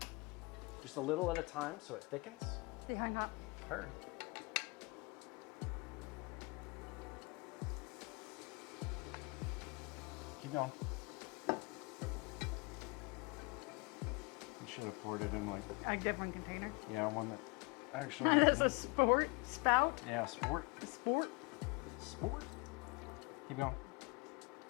just a little at a time so it thickens. Stay hung up. Heard. Keep going. You should have poured it in like, A different container. yeah, one that actually. That's a sport spout. Yeah, sport. Sport. Sport. Keep going.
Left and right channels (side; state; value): right; quieter; 27.8 dB